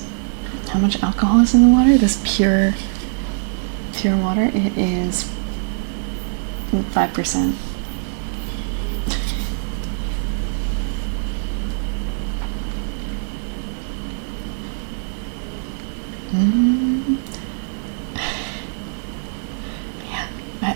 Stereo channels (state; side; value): silent; left; digital silence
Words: How much alcohol is in the water? This pure water? It is 5%. Yeah,